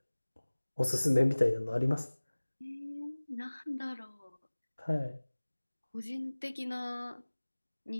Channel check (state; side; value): inverted; both; correlation -1.00